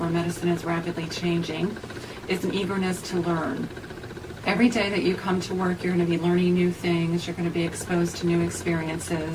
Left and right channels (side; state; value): both; identical; correlation 1.00